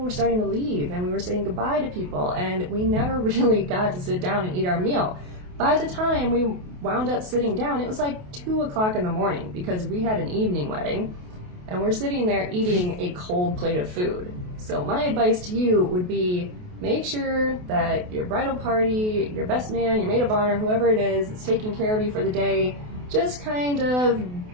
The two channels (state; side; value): late; left; 28 ms